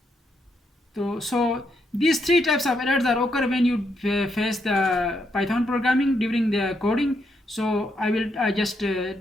So these three types of errors are occur when you face the Python programming during the coding. So I will just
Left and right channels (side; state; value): both; normal; correlation 0.78